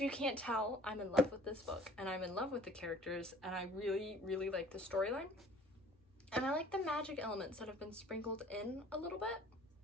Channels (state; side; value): normal; both; correlation 0.52